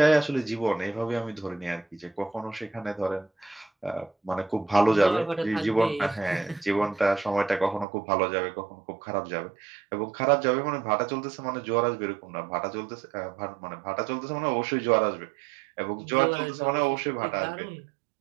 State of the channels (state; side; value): drops out; left; at 7.9 s